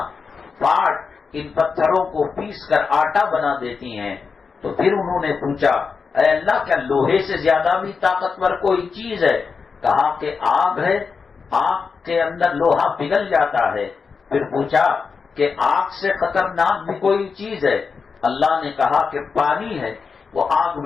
پاٹ ان پتھروں کو پیس کر آٹا بنا دیتی ہیں۔ تو پھر انہوں نے پوچھا، اے اللہ کیا لوہے سے زیادہ بھی طاقتور کوئی چیز ہے؟ کہا کہ آگ ہے، آگ کے اندر لوہا پگھل جاتا ہے۔ پھر پوچھا کہ آگ سے خطرناک بھی کوئی چیز ہے؟ اللہ نے کہا کہ پانی ہے، وہ آگ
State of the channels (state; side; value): quieter; right; 5.3 dB